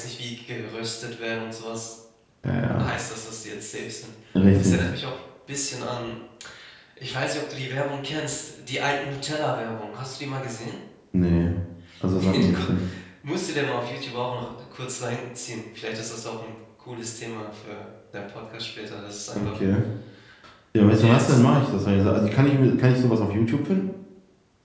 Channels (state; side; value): identical; both; correlation 1.00